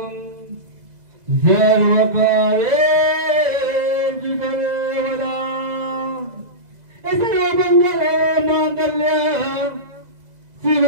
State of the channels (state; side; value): late; left; 2.0 ms